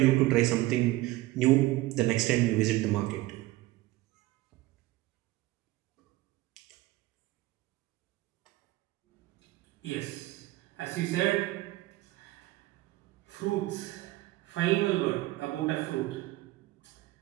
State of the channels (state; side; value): quieter; left; 17.9 dB